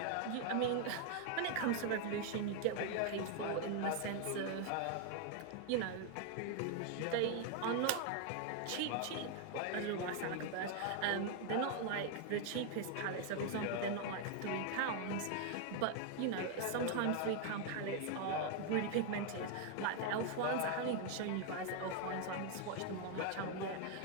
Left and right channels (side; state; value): both; different; correlation 0.01